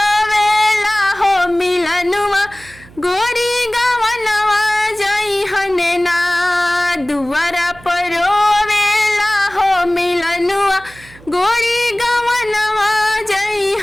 हो मिलनुआ गोरी गवनवा जइहने ना। दुआरा पर रोवेला हो मिलनुआ गोरी गवनवा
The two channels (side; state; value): right; noise; hum, 23 dB below the sound